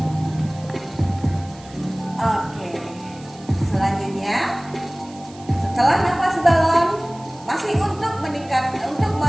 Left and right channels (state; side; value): noise; right; hiss, 23 dB below the sound